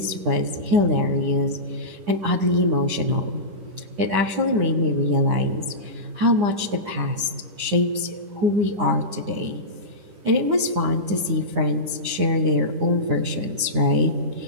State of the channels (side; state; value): left; late; 9.8 ms